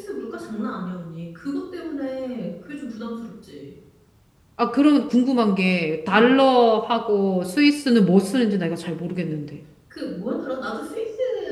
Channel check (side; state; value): both; identical; correlation 1.00